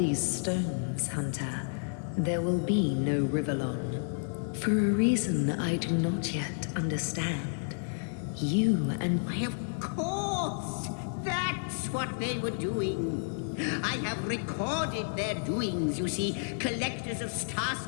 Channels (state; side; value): silent; right; digital silence